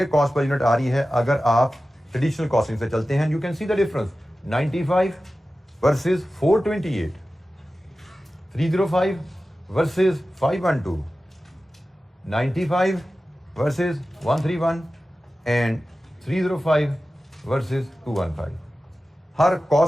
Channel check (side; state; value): both; normal; correlation 0.95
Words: कॉस्ट पर यूनिट आ रही है अगर आप ट्रेडिशनल कॉस्टिंग से चलते हैं। You can see the difference, 95 versus 428, 305 versus 512, 95 versus 131 and 305 versus 215। Her